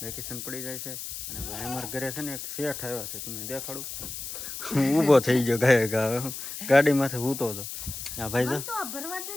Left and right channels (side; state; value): left; noise; hiss, 8 dB below the sound